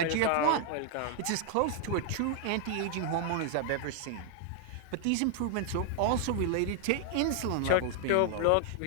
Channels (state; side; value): different; both; correlation 0.00